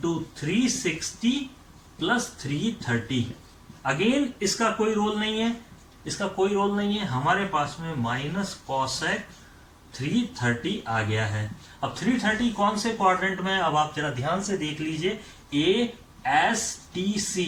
360 plus 330। Again इसका कोई रोल नहीं है, इसका कोई रोल नहीं है, हमारे पास में माइनस कॉसेक 330 आ गया है। अब 330 कौन से क्वाड्रेंट में है? अब आप जरा ध्यान से देख लीजिए, ए एस टी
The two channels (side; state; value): both; identical; correlation 1.00